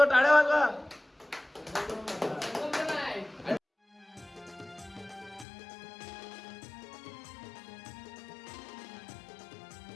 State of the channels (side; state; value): right; drops out; at 5.5 s